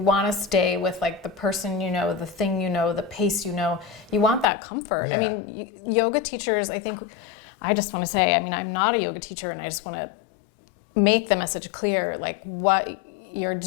want to stay with like the person you know, the thing you know, the pace you know. You want that comfort. Yeah. I mean, yoga teachers, I think, I just want to say, I mean, I'm not a yoga teacher, and I just want to make the message clear, like what you're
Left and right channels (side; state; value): right; drops out; at 4.5 s